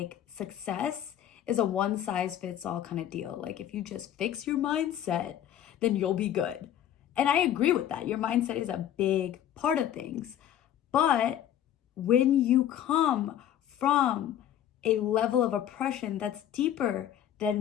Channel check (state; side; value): quieter; right; 10.9 dB